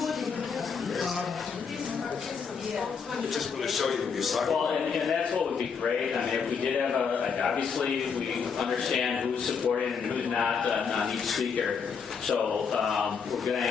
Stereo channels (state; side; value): quieter; right; 6.0 dB